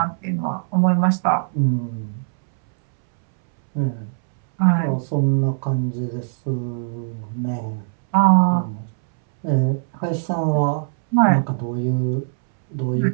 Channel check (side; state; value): left; silent; 65 dB below the other